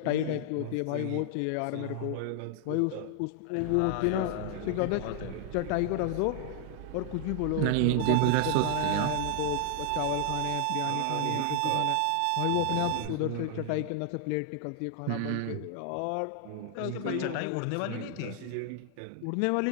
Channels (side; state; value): both; different; correlation 0.00